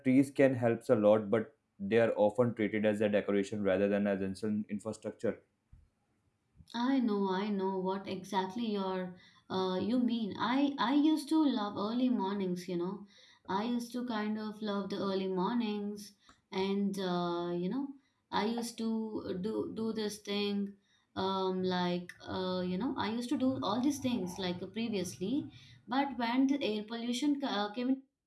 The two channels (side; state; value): both; identical; correlation 1.00